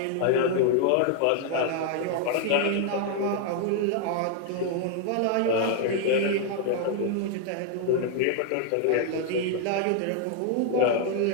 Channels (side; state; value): both; different; correlation 0.00